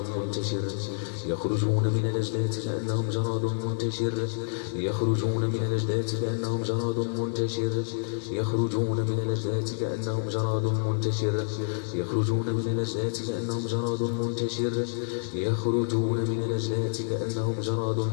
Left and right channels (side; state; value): right; silent; digital silence